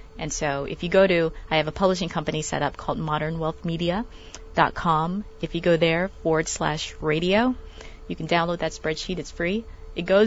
And so if you go to, I have a publishing company set up called modernwealthmedia.com. If you go there /radio, you can download that spreadsheet. It's free. It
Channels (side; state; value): both; identical; correlation 1.00